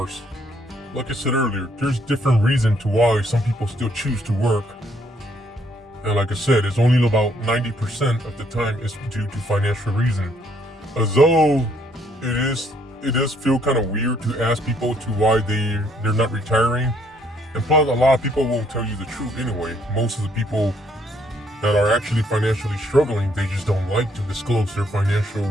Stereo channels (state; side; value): normal; both; correlation 0.68